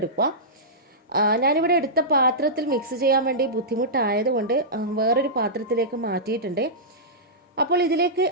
ഞാനിവിടെ എടുത്ത പാത്രത്തിൽ മിക്സ് ചെയ്യാൻ വേണ്ടി ബുദ്ധിമുട്ടായതുകൊണ്ട് വേറൊരു പാത്രത്തിലേക്ക് മാറ്റിയിട്ടുണ്ട്. അപ്പോൾ ഇതിലേക്ക്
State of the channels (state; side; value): normal; both; correlation -0.15